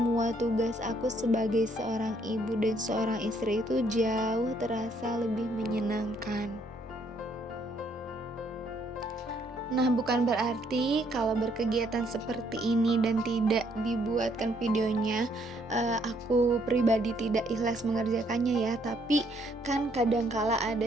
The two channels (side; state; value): both; normal; correlation 0.68